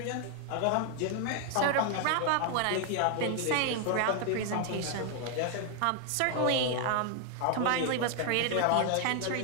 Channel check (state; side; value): different; both; correlation 0.00